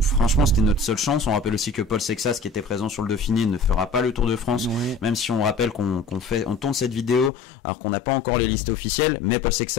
franchement c'était notre seule chance. On rappelle aussi que Paul Sexas, qui était présent sur le Dauphiné, ne fera pas le Tour de France, même si on rappelle qu'on tourne cette vidéo alors qu'on n'a pas encore les listes officielles. Mais Paul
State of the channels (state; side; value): drops out; right; at 7.3 s